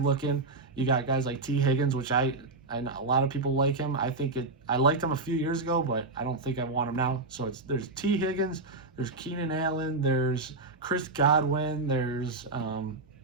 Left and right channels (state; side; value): quieter; left; 3.3 dB